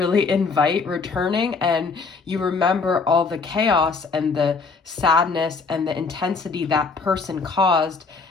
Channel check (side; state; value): right; quieter; 4.5 dB